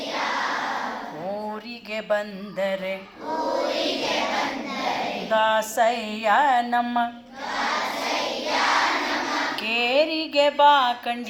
ಊರಿಗೆ ಬಂದರೆ ದಾಸಯ್ಯ ನಮ್ಮ ಕೇರಿಗೆ ಬಾ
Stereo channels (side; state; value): both; identical; correlation 1.00